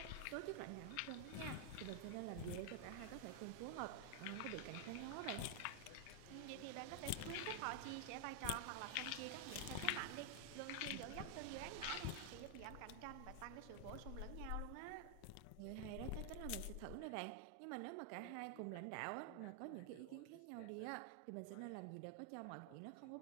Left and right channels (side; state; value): both; different; correlation 0.00